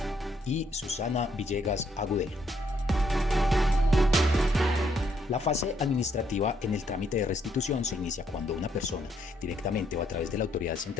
y Susana Villegas Agudelo. La fase administrativa en el trámite de restitución se inicia cuando una persona, directamente o a través de la autoridad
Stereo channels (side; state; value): both; normal; correlation 0.72